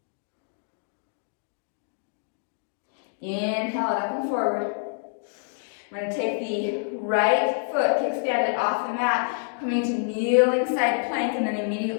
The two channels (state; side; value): silent; right; digital silence